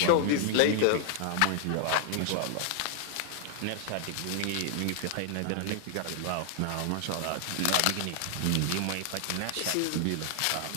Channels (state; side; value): different; both; correlation 0.00